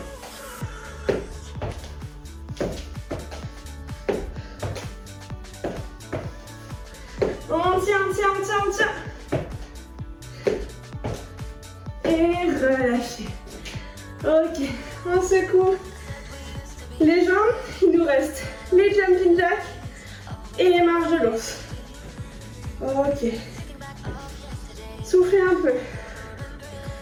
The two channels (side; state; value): both; identical; correlation 1.00